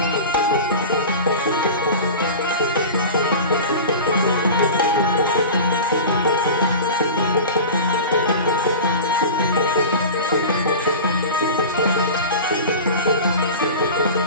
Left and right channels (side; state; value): both; inverted; correlation -0.32